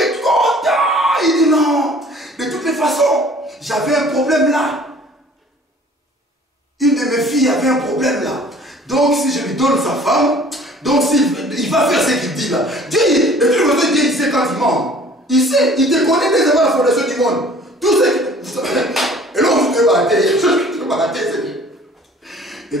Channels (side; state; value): both; normal; correlation 0.51